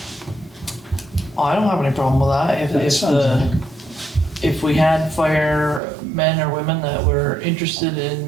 I don't have any problem with that. If we had firemen or women that were interested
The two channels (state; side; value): drops out; left; at 5.8 s